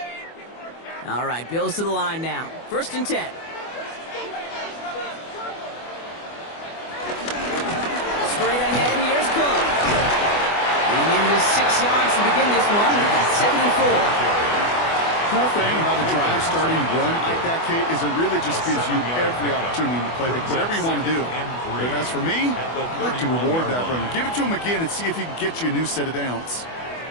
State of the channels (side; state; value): right; late; 24 ms